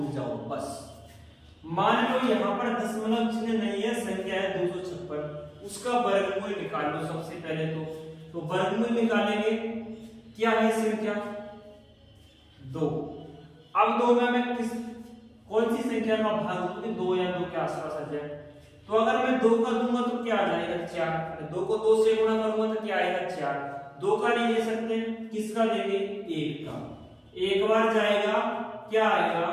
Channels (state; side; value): identical; both; correlation 1.00